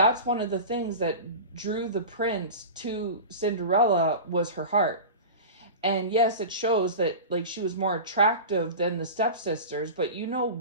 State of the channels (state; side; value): inverted; both; correlation -0.30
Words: one of the things that drew the prince to Cinderella, was her heart. And yes, it shows that like she was more attractive than the stepsisters, but you know